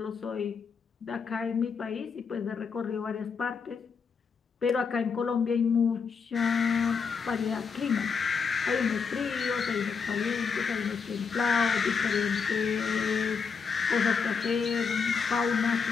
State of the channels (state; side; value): quieter; right; 5.7 dB